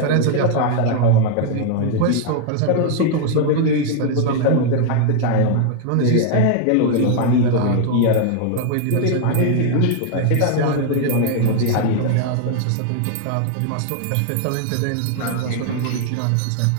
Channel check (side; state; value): both; different; correlation 0.00